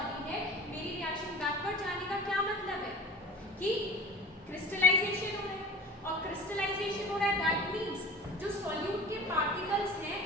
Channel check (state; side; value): normal; both; correlation 0.39